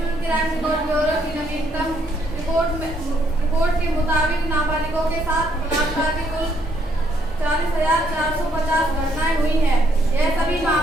क्राइम रिकॉर्ड ब्यूरो की नवीनतम रिपोर्ट के मुताबिक नाबालिगों के साथ बलात्कार की कुल 40,450 घटनाएं हुई हैं। यह सभी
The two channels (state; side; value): normal; both; correlation 0.71